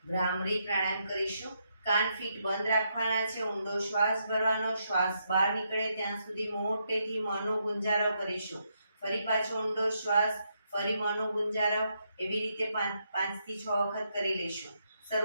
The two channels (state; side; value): inverted; both; correlation -0.79